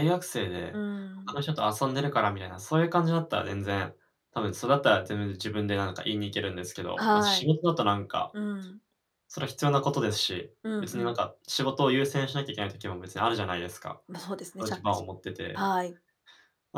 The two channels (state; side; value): identical; both; correlation 1.00